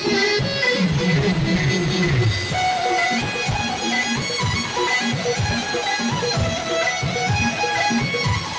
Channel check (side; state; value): both; identical; correlation 1.00